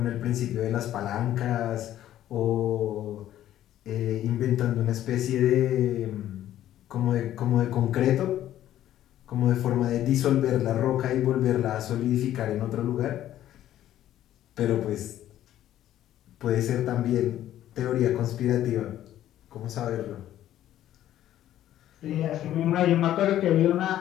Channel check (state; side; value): quieter; right; 12.4 dB